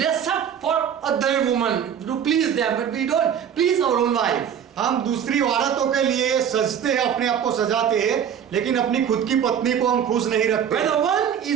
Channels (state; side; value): quieter; left; 8.5 dB